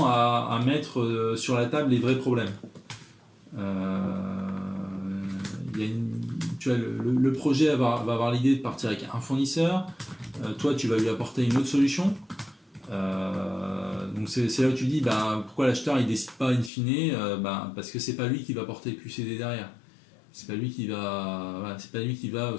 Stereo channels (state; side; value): drops out; right; at 16.7 s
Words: à mettre sur la table les vrais problèmes. Tu vois, le projet va avoir l'idée de partir avec un fournisseur, toi tu vas lui apporter une autre solution. Donc c'est là où tu dis pourquoi l'acheteur il décide pas in fine, parce que c'est pas lui qui va porter le QCD derrière. C'est pas lui qui va